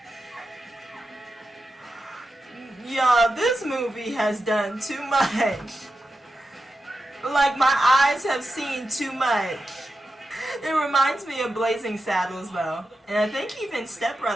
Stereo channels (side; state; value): both; normal; correlation 0.90